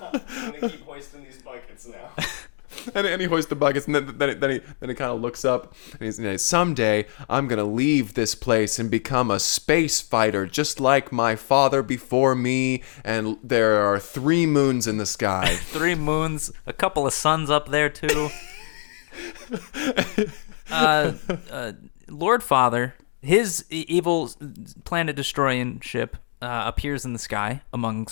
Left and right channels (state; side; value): silent; right; digital silence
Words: going to keep hoisting these buckets now. And he hoists the buckets, and then he kind of looks up, and he's someday I'm gonna leave this place and become a space fighter, just like my father before me. And there are 3 moons in the sky. 3 moons, a couple of suns up there too. Lord Father, his evil planet destroying ship appears in the sky